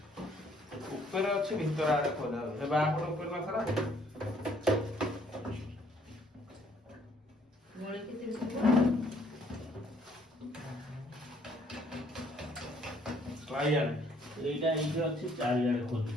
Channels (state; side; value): normal; both; correlation 0.64